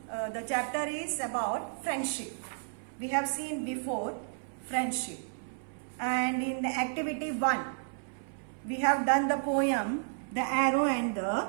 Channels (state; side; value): silent; left; 56 dB below the other